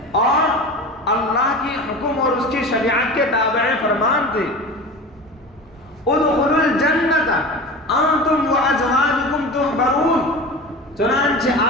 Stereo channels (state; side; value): normal; both; correlation 0.32